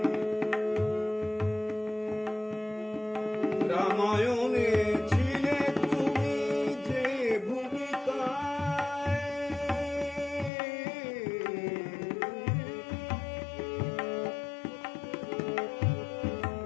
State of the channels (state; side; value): drops out; right; at 10.5 s